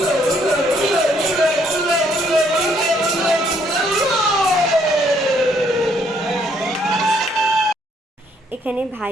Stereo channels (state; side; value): normal; both; correlation 0.68